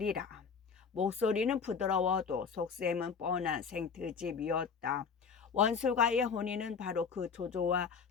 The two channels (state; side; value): quieter; right; 5.9 dB